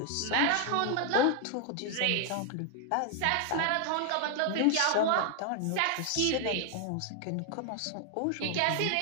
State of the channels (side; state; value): both; different; correlation 0.00